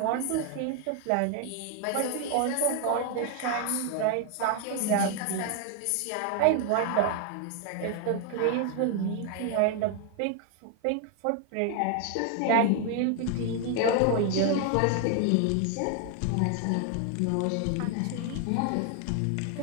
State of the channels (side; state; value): both; different; correlation 0.00